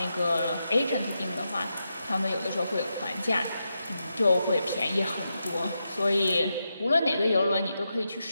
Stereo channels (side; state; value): both; inverted; correlation -0.86